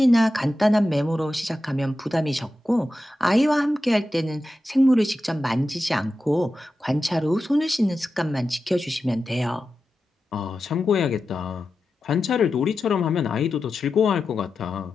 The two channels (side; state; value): both; normal; correlation 0.91